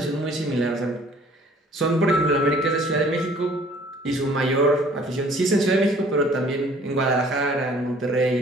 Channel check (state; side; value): normal; both; correlation 0.55